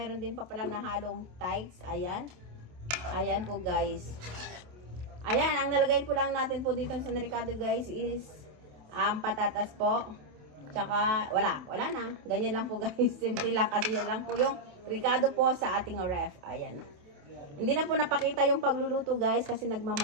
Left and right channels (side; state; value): left; late; 27 ms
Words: din pa palang nahalong thighs. Ayan. Ayan po guys. Ayan, ang nalagay po lang natin po dito sa Ricado guys is patatas po. Tsaka, wala na. Ganyan lang po guys. Simple lang kasi yan lang po yung Ricado po sa ating ref. Ayan. Hindi na po napakita yung pagluluto guys kasi